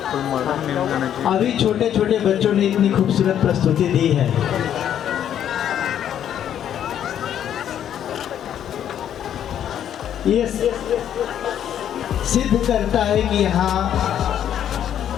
अभी छोटे छोटे बच्चों ने इतनी खूबसूरत प्रस्तुति दी है। ये सिद्ध करता है कि यहाँ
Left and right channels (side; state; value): right; quieter; 10.0 dB